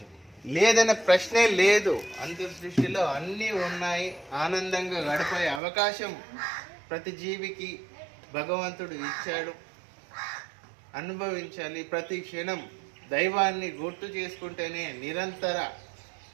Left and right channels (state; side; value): drops out; left; at 5.6 s